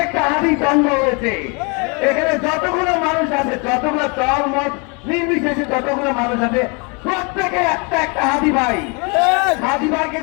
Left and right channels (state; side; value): quieter; right; 31.9 dB